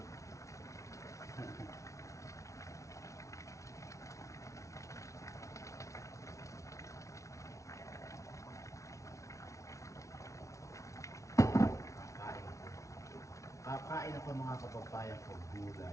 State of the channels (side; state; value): right; late; 0.15 ms